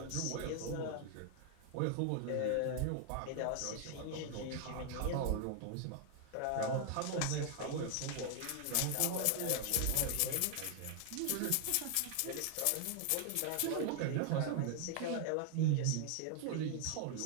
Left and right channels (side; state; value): both; different; correlation 0.00